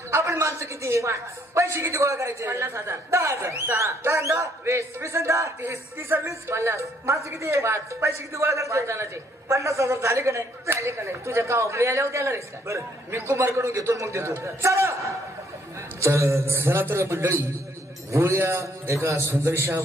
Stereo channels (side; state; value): both; normal; correlation 0.67